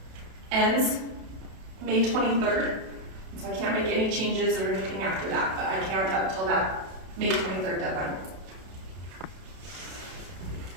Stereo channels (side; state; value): left; late; 32 ms